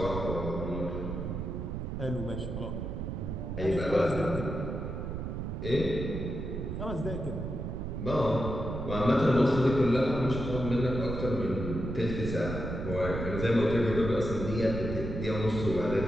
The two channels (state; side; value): noise; right; rumble, 4 dB below the sound